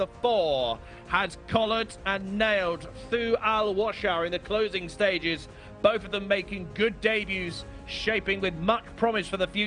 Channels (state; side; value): identical; both; correlation 1.00